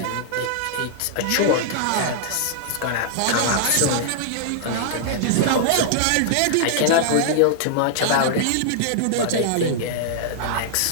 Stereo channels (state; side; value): different; both; correlation -0.01